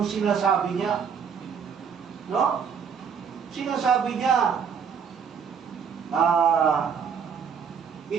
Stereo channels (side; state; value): left; quieter; 6.9 dB